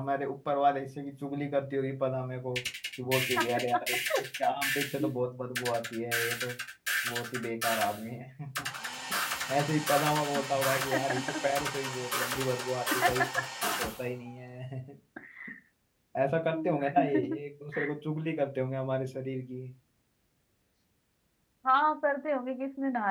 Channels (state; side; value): identical; both; correlation 1.00